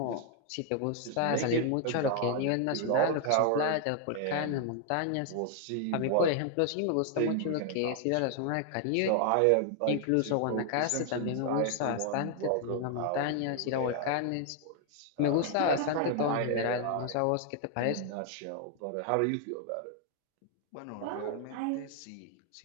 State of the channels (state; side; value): different; both; correlation 0.00